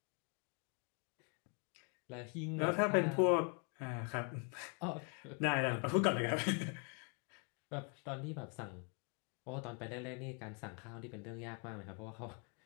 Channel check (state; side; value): quieter; right; 38.8 dB